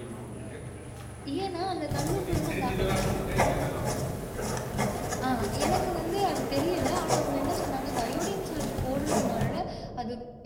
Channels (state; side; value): identical; both; correlation 1.00